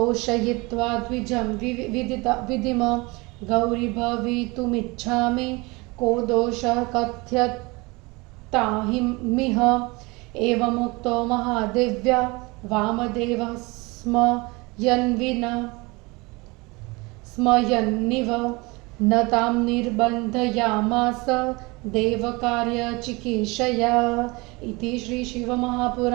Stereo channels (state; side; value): quieter; left; 25.2 dB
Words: द्विजं विदिम गौरी भवितुमिच्छामि को दोषः कथ्यतामिह एवमुक्तो महादेव्या वामदेवः स्मयन्निव न तां निर्बन्धयामास देवकार्यचिकीर्षया इति